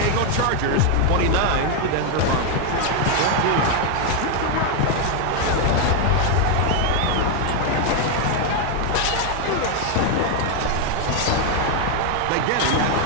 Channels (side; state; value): both; different; correlation 0.01